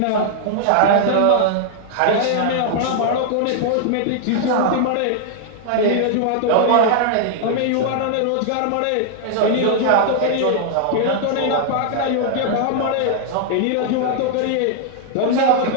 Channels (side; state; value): both; different; correlation -0.01